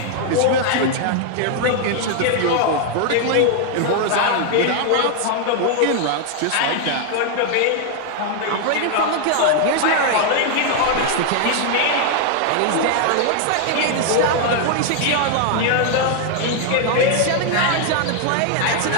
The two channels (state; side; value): different; both; correlation 0.00